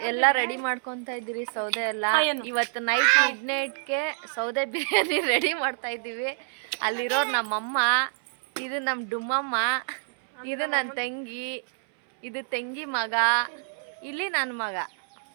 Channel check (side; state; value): left; silent; 60 dB below the other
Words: ಎಲ್ಲ ರೆಡಿ ಮಾಡ್ಕೊತಾ ಇದ್ದೀರಿ, ಸೌದೆ ಎಲ್ಲ. ಇವತ್ತು ನೈಟ್ ಮಿಡ್ನೈಟ್ಗೆ ಸೌದೆ ಬಿರಿಯಾನಿ ರೆಡಿ ಮಾಡ್ತಾ ಇದ್ದೀವಿ. ಅಲ್ಲಿರೋರು ನಮ್ಮಮ್ಮ, ಇದು ನಮ್ಮ ಡುಮ್ಮಮ್ಮ, ಇದು ನನ್ನ ತಂಗಿ, ಇದು ತಂಗಿ ಮಗ, ಇಲ್ಲಿ ನನ್ನ ಮಗ.